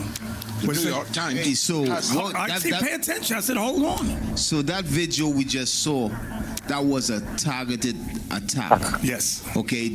The New York Times. Hey, so Pay attention. I said, hold on. So that video we just saw, that was a targeted attack. Yes. Okay,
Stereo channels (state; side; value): identical; both; correlation 1.00